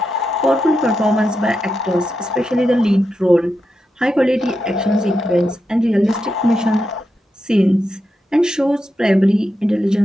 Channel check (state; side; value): normal; both; correlation 0.87